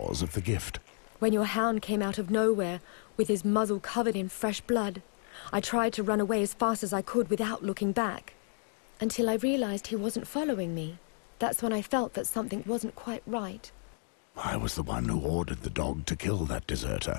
of the gift. When your hound came out of nowhere, with his muzzle covered in fresh blood, I tried to run away as fast as I could without looking back. Until I realized he wasn't following me. That's when I felt that something wasn't quite right. I was the one who ordered the dog to kill that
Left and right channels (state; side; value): silent; right; 56 dB below the other